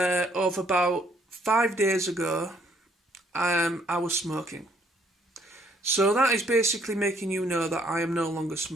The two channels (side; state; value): both; normal; correlation 0.66